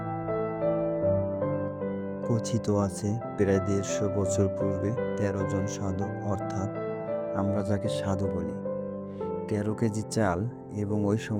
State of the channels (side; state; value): both; identical; correlation 1.00